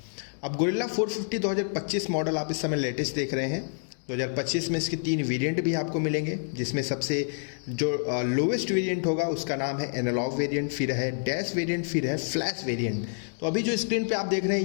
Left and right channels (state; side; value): silent; right; digital silence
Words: अब गोरिल्ला 450 2025 मॉडल आप इस समय लेटेस्ट देख रहे हैं। 2025 में इसके 3 वेरिएंट भी आपको मिलेंगे, जिसमें सबसे जो लोवेस्ट वेरिएंट होगा उसका नाम है एनालॉग वेरिएंट, फिर है डैश वेरिएंट, फिर है फ्लैश वेरिएंट। तो अभी जो स्क्रीन पे आप देख रहे